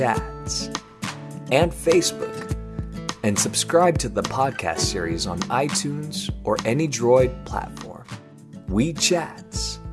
and Facebook, and subscribe to the podcast series on iTunes or any Droid platform. WeeChats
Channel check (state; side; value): identical; both; correlation 1.00